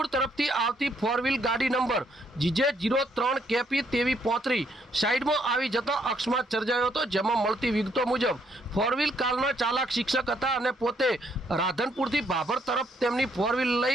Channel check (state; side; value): normal; both; correlation 0.71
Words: તરફથી આવતી ફોર વ્હીલ ગાડી નંબર GJ03KP 2335 સાઈડમાં આવી જતા અકસ્માત સર્જાયો હતો, જેમાં મળતી વિગતો મુજબ ફોર વ્હીલ કારના ચાલક શિક્ષક હતા અને પોતે રાધનપુરથી ભાભર તરફ તેમની ફોર વ્હીલ